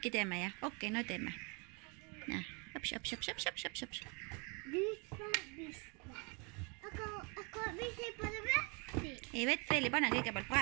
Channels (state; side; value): quieter; left; 32.4 dB